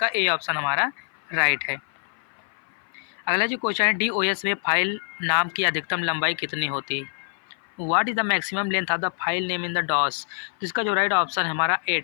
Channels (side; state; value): right; silent; 56 dB below the other